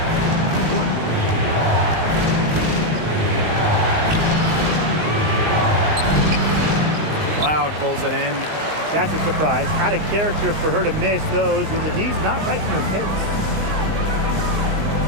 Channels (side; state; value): left; late; 19 ms